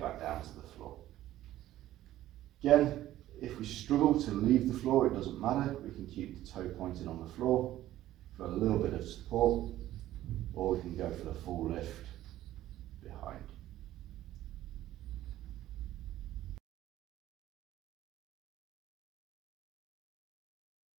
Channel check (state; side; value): quieter; left; 14.0 dB